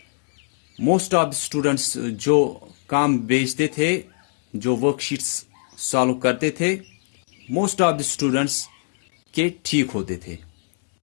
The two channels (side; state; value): right; silent; digital silence